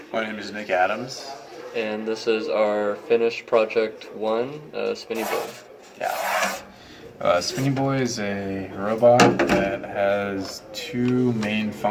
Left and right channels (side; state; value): both; identical; correlation 1.00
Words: My name is Nick Adams. and this is our finished project 1, Spinny Boi. Yeah. Spinny Boi is a robot that has two main